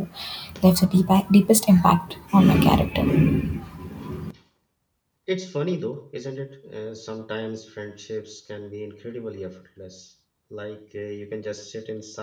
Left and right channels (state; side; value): identical; both; correlation 1.00